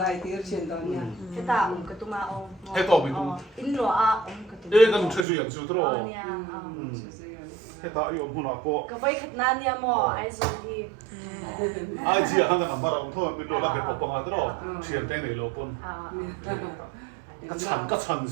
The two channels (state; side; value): drops out; left; at 5.2 s